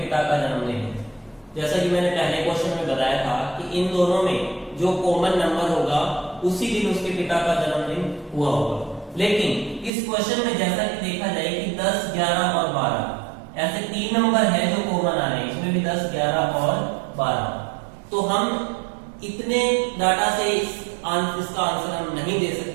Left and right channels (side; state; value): left; drops out; at 9.9 s